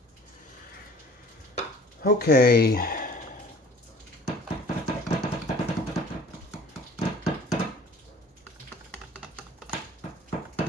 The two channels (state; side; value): normal; both; correlation 0.49